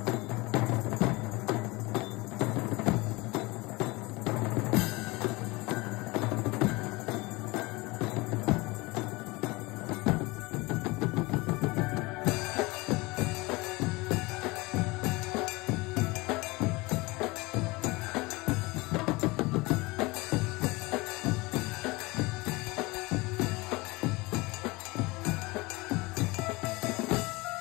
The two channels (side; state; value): right; quieter; 23.5 dB